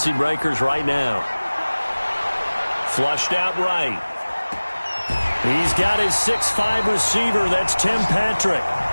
breakers right now. Flushed out right. He's got his 6'5" receiver. That's Tim Patrick.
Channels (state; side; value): inverted; both; correlation -1.00